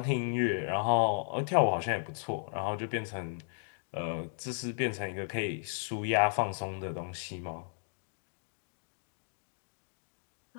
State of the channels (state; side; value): silent; right; digital silence